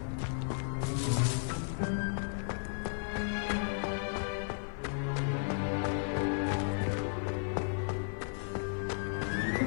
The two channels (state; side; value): silent; right; 55 dB below the other